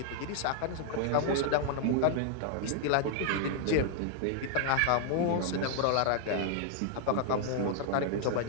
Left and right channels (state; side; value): different; both; correlation 0.00